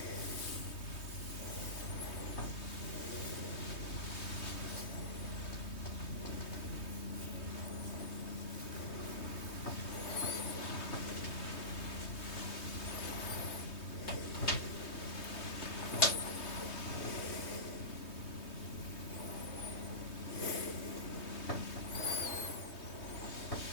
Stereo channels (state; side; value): late; right; 3.2 ms